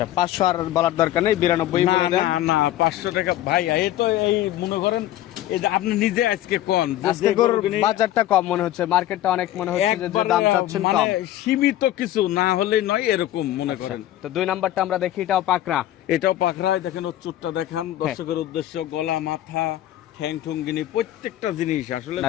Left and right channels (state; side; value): quieter; right; 13.5 dB